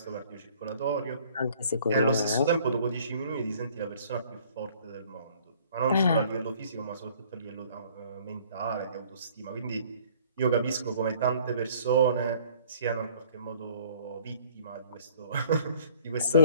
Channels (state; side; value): inverted; both; correlation -0.56